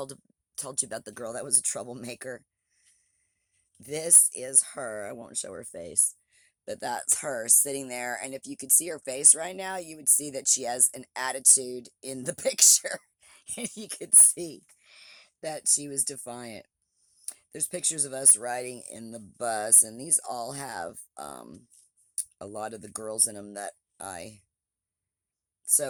you about the girl that was a troublemaker. This is her. I won't show her face. But that's her sitting there. And if you could see her face right now, you would see that she has an attitude in the picture. And you could see that she was defiant. There's pictures of us riding in the bus, and these all have a lot of the girls in them that I...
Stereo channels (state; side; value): identical; both; correlation 1.00